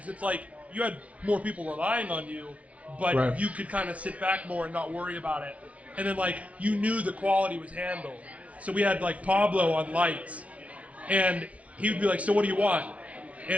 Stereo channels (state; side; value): late; left; 0.065 ms